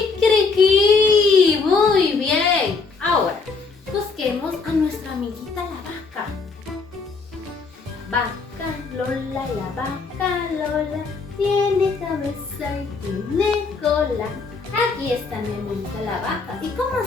Muy bien. Ahora, busquemos a nuestra amiguita la vaca. Vaca Lola, la vaca Lola tiene cabeza y tiene cola. Aquí está mi amiguita la vaca. ¿Y cómo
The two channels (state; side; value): quieter; right; 4.5 dB